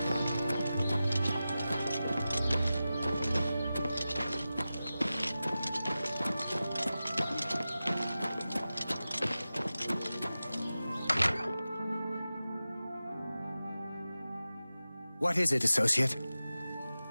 What is it, associate?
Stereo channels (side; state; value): both; inverted; correlation -0.94